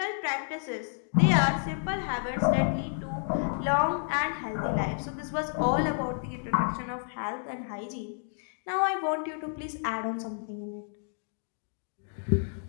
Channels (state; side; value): silent; right; 58 dB below the other